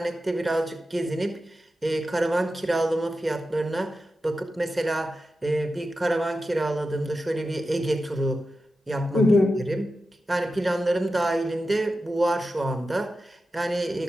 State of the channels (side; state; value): both; normal; correlation 0.91